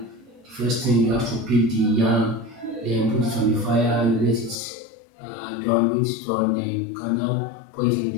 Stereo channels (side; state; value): right; drops out; at 4.6 s